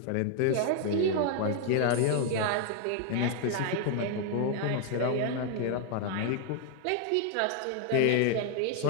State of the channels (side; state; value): both; different; correlation 0.00